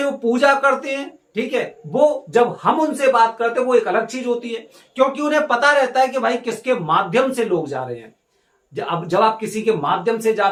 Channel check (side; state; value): both; identical; correlation 1.00